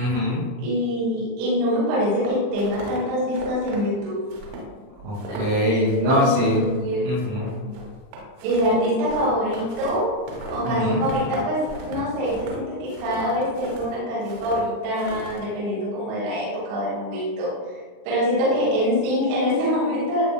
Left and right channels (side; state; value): left; late; 39 ms